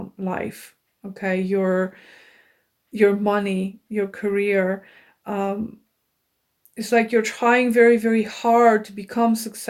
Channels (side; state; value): both; identical; correlation 1.00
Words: life. Okay, your money, your career. Um, it's like you're trying very, very hard to become